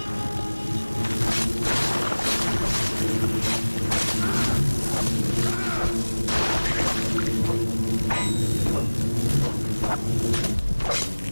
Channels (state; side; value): inverted; both; correlation -1.00